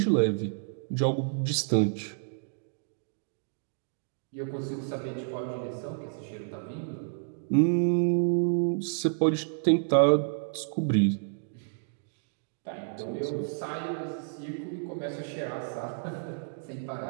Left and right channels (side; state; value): left; silent; digital silence